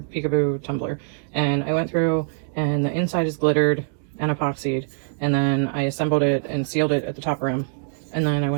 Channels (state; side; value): silent; left; digital silence